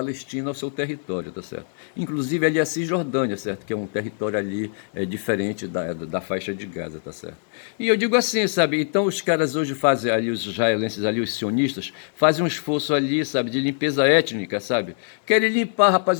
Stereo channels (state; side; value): silent; right; digital silence